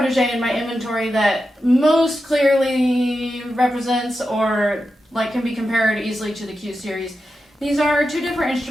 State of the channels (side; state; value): both; normal; correlation 0.90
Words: in my inventory that most clearly represents or can be compared easily to the Q Series. These are two different